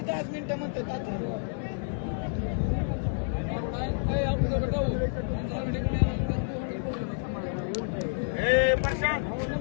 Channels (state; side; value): silent; right; digital silence